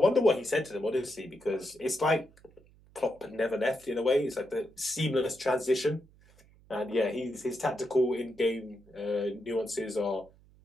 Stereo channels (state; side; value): noise; right; hum, 27 dB below the sound